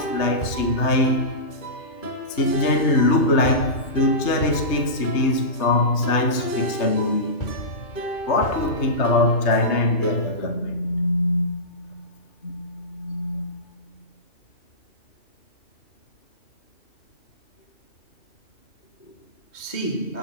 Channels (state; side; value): late; right; 3.2 ms